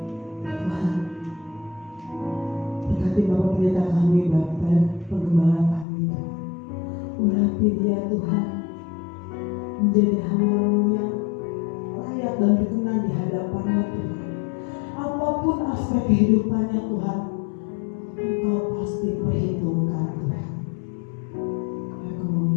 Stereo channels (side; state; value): right; drops out; at 5.9 s